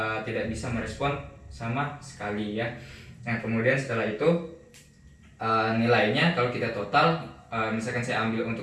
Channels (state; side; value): identical; both; correlation 1.00